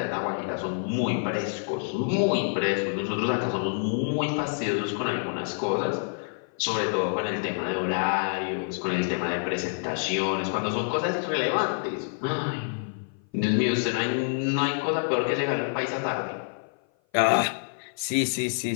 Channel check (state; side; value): silent; right; 56 dB below the other